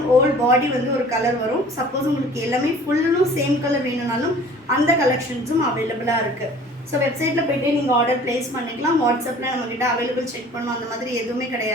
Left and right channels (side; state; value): both; normal; correlation 0.48